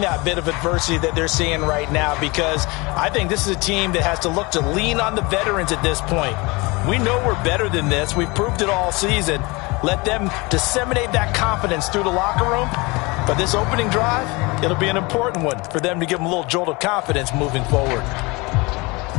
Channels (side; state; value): right; quieter; 25.4 dB